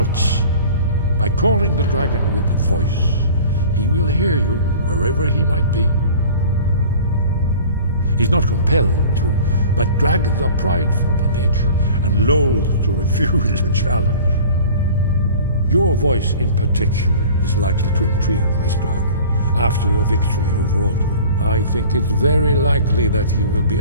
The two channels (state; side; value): inverted; both; correlation -0.44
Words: By calling the dragon with a voice, he will hear you wherever he might be. He's not compelled to, but dragons are prideful by nature and loath to refuse a challenge. Your voice in particular is likely to intrigue this dragon. after your victory over Aldrin, I think it's very likely that he will be